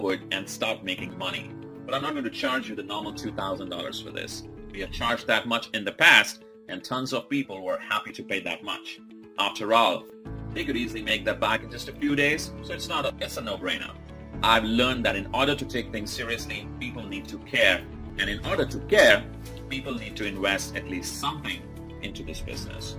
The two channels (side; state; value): both; identical; correlation 1.00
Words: and start making money. But I'm not going to charge you the normal $2,000 for this. We have charged that much in the past, and tons of people were happy to pay that much. After all, they could easily make that back in just a few days, so it's a no-brainer. I've learned that in order to take things seriously, people need to care. And in order to care, people need to invest at least something into this business,